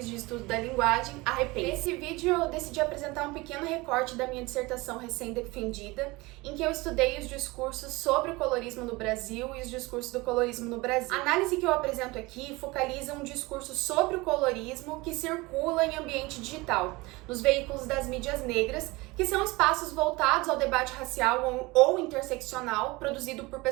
de estudo da linguagem, a REPEN. Nesse vídeo eu decidi apresentar um pequeno recorte da minha dissertação recém-defendida, em que eu estudei os discursos sobre o colorismo no Brasil e os discursos do colorismo no Brasil. A análise que eu apresento aqui focaliza um discurso sobre o colorismo que circula em ambiente digital, nos veículos das mídias negras, que são espaços voltados ao debate racial ou interseccional produzido por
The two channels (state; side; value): quieter; left; 22.8 dB